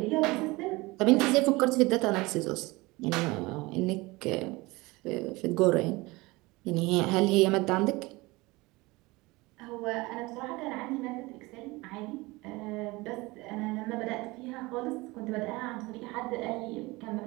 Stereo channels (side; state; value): left; quieter; 22.5 dB